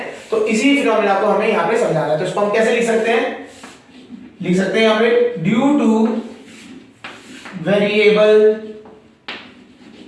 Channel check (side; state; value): both; identical; correlation 1.00